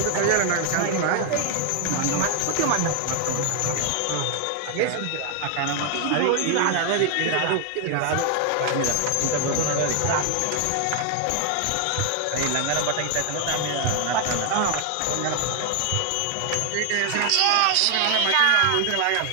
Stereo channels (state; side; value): different; both; correlation 0.00